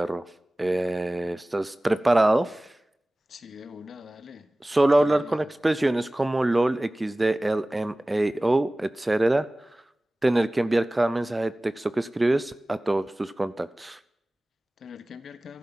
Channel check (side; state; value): both; normal; correlation 0.98